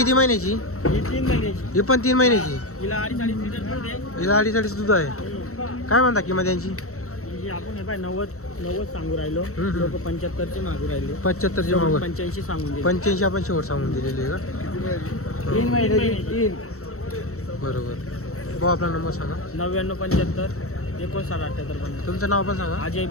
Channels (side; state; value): right; late; 0.64 ms